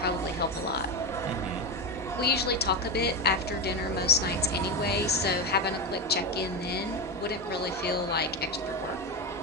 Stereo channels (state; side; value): normal; both; correlation 0.14